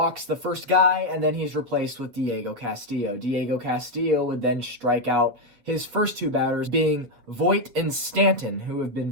the first guy, and then he's replaced with Diego Castillo. Diego Castillo would then strike out his first 2 batters, being Voit and Stanton, who have been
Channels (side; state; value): left; late; 8.5 ms